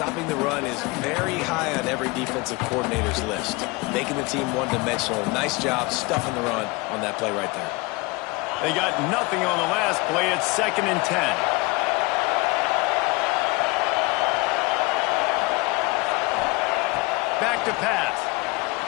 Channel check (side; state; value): right; quieter; 24.8 dB